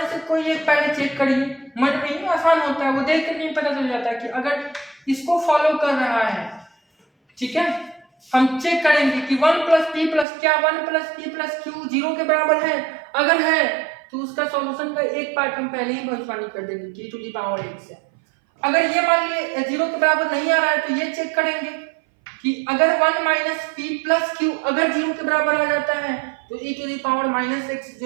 से कोई एक पहले चेक करिए। मन में ही आसान होता है, वो देख कर नहीं पता चल जाता है कि अगर इसको फॉलो कर रहा है, ठीक है, हम चेक करेंगे कि 1 प्लस पी प्लस, क्या 1 प्लस पी प्लस क्यू 0 के बराबर है? अगर है तो उसका सॉल्यूशन का एक पार्ट हम पहले ही भविष्यवाणी कर देंगे टी टू दी पावर 1 से। अगर ये मान लिए 0 के बराबर नहीं आ रहा है तो ये चेक करेंगे कि अगर 1 माइनस पी प्लस क्यू अगर 0 के बराबर आ जाता है तो e to the power minus x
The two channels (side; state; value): left; drops out; at 10.2 s